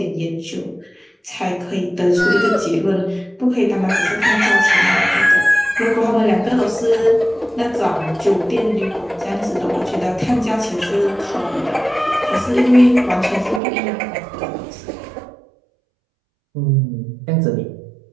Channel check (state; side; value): drops out; left; at 13.6 s